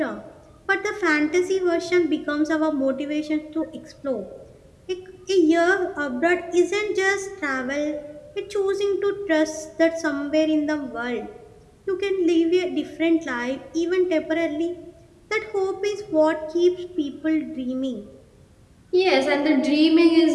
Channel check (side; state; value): both; identical; correlation 1.00